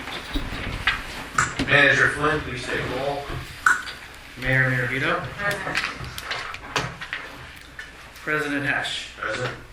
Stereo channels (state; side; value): identical; both; correlation 1.00